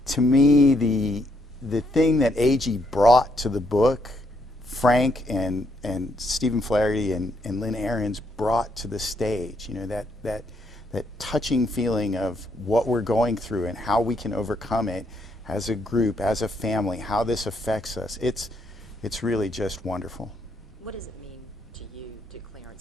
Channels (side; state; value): both; normal; correlation 0.74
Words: to me, the thing that A.G. brought to the book, Frank and Stephen Flaherty and Lynn Ahrens brought to the stage, that touching feeling of what we're going through and how we can overcome it as a group, as a family, how this affects us. It's really just wonderful. What does it mean to you, to